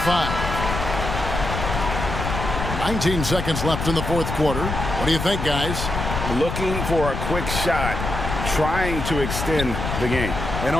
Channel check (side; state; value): left; noise; rumble, 4 dB below the sound